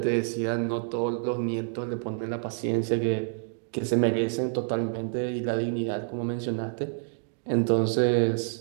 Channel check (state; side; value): silent; left; digital silence